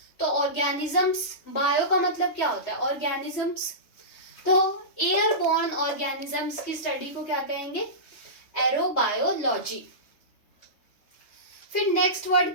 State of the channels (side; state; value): right; late; 3.2 ms